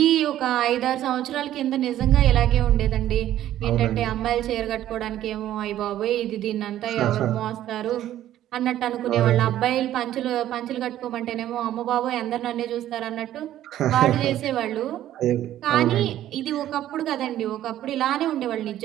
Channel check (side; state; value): left; quieter; 12.6 dB